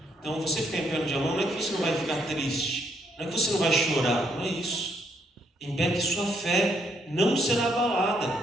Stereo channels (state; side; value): normal; both; correlation 0.72